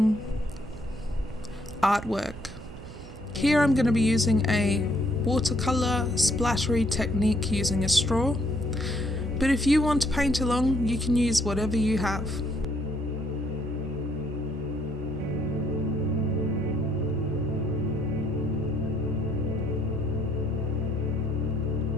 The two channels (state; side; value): noise; right; hum, 18 dB below the sound